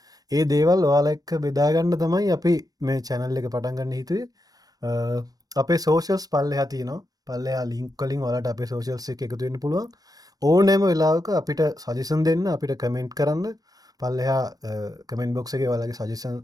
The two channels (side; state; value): left; late; 0.18 ms